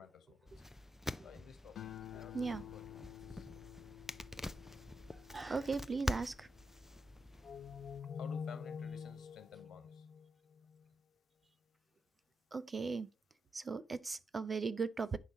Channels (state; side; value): normal; both; correlation 0.86